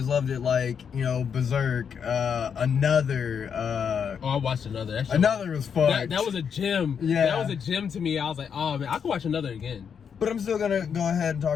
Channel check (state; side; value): quieter; right; 7.1 dB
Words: loved it, like, you know, Berserk, Another, I watched another. That shit Another was fun. That was a gem. Yeah. That was a gem to me. I was like, oh man, I could watch another again. But I'm still gonna go ahead and